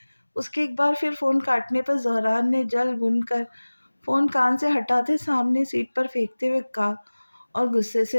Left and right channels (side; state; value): both; inverted; correlation -1.00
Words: اس کے ایک بار پھر فون کاٹنے پر زہران نے جل بن کر فون کان سے ہٹاتے سامنے سیٹ پر پھینکتے ہوئے کہا اور غصے